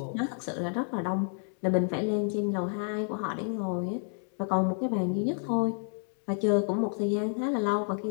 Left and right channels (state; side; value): silent; right; 58 dB below the other